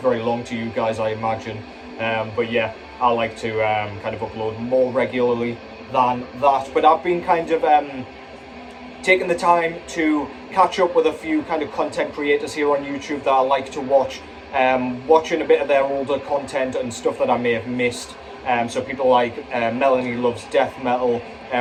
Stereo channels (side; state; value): both; identical; correlation 1.00